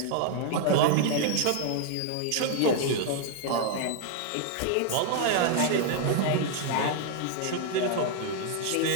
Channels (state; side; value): different; both; correlation 0.00